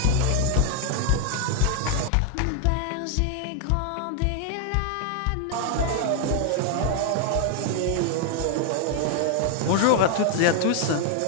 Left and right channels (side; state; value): both; different; correlation 0.00